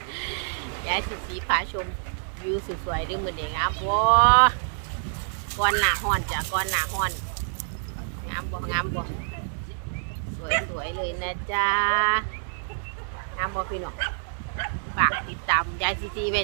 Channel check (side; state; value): left; silent; digital silence